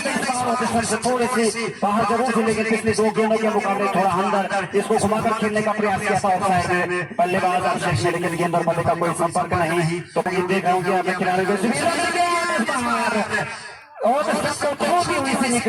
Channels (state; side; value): identical; both; correlation 1.00